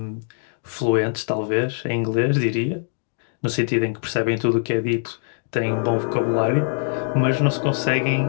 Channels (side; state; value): right; silent; digital silence